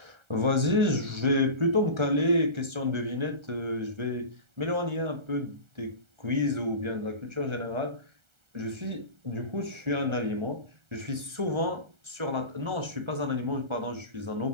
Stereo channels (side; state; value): left; late; 1.3 ms